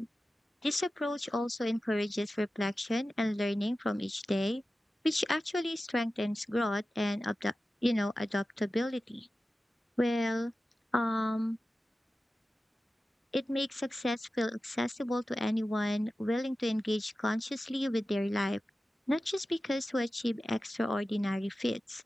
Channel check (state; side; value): normal; both; correlation 0.94